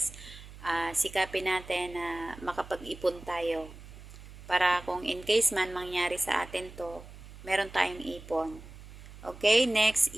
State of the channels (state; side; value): noise; right; hum, 16 dB below the sound